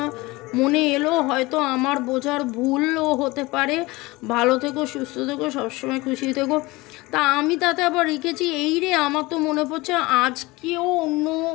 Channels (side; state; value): right; quieter; 21.9 dB